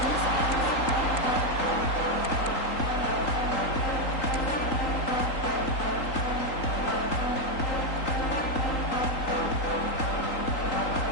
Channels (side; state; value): right; late; 3.8 ms